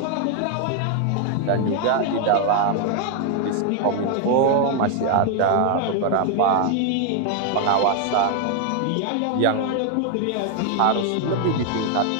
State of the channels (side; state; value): both; different; correlation 0.00